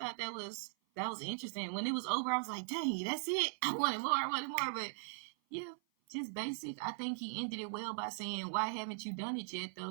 that was interesting. When it was over, I was like, dang, that's it. I wanted more. But yeah, just basic. I think he ended it well by saying, "Why haven't you done it yet,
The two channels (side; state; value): left; silent; 52 dB below the other